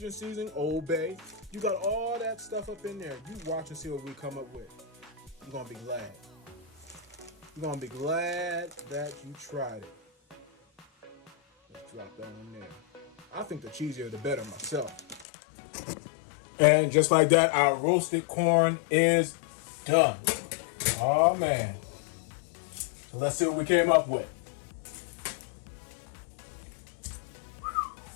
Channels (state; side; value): drops out; right; at 15.2 s